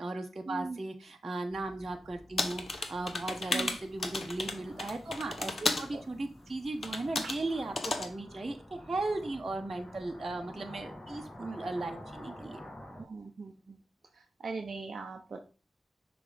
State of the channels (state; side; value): normal; both; correlation 0.88